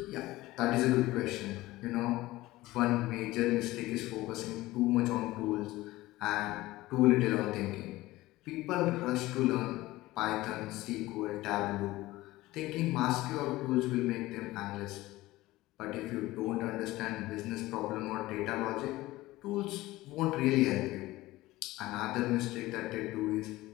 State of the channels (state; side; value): quieter; right; 18.1 dB